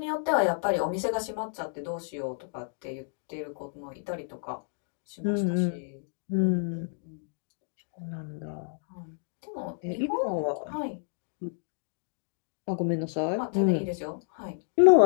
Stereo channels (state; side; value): silent; right; digital silence